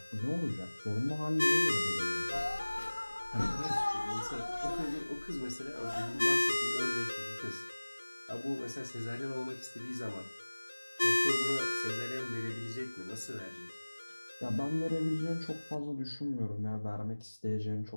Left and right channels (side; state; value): both; inverted; correlation -1.00